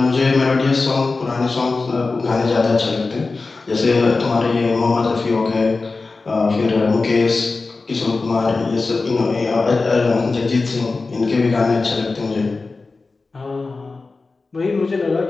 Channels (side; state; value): right; quieter; 3.8 dB